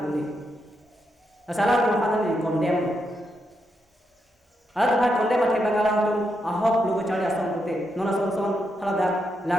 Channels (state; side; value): normal; both; correlation 0.82